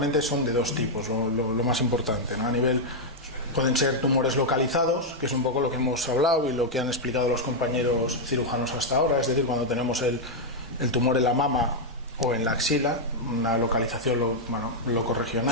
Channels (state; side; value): normal; both; correlation -0.02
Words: son de dos tipos, lo más importante, ¿no? A nivel, pueden ser tumores localizados, que es un poco lo que hemos hablado y lo que han explicado los compañeros cirujanos hasta ahora, es decir, cuando tenemos el tumor en la mama o en la axila, una localización